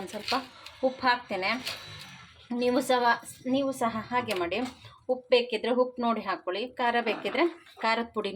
ಸ್ವಲ್ಪ ಉಪ್ಪು ಹಾಕ್ತೇನೆ. ನೀವು ಸಹ ಹಾಗೆ ಮಾಡಿ. ಉಪ್ಪು ಬೇಕಿದ್ರೆ ಉಪ್ಪು ನೋಡಿ ಹಾಕ್ಕೊಳ್ಳಿ. ಖಾರ ಬೇಕಿದ್ರೆ ಖಾರದ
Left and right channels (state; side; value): identical; both; correlation 1.00